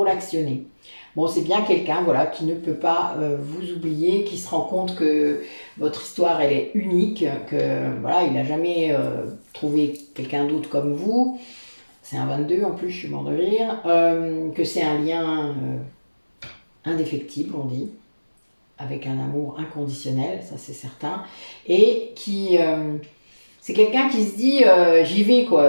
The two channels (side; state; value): both; inverted; correlation -1.00